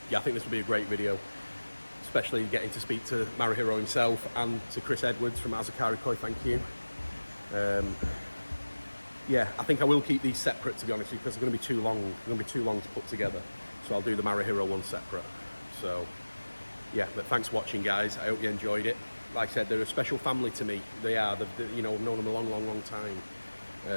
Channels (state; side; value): inverted; both; correlation -1.00